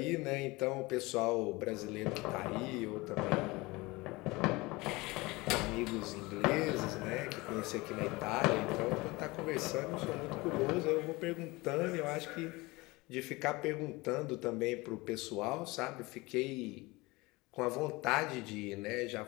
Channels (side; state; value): right; quieter; 22.8 dB